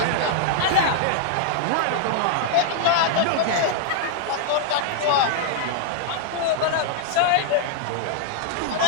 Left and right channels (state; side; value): different; both; correlation -0.01